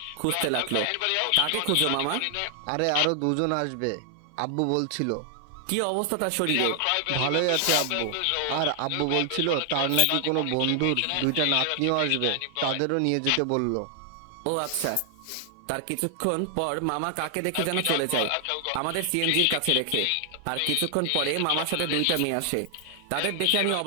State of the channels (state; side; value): different; both; correlation 0.00